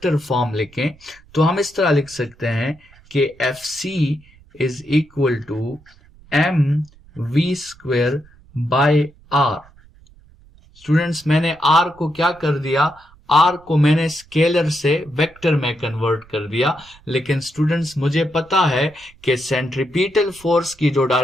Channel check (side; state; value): right; noise; rumble, 27 dB below the sound